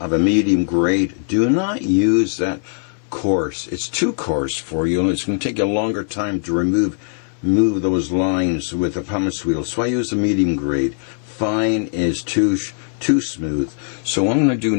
a medium grade, do not use that coarse. It's too coarse for you, and it's going to take you a longer time to remove those lines with the pumice wheel. So I use the medium grade. Fine is too smooth. So what I'm going to do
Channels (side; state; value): right; silent; 57 dB below the other